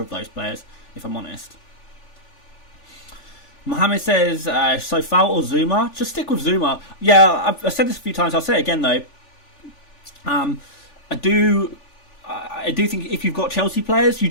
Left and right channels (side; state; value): right; late; 3.4 ms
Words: of those players, if I'm honest. Mohammed says, Sofal or Zuma? Just stick with Zuma. Yeah, I've said this a few times. I'll say it again, though. I do think if you've got Chelsea players, you